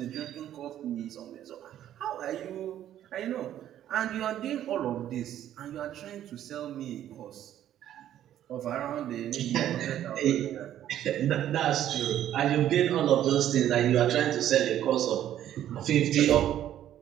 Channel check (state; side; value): quieter; left; 11.5 dB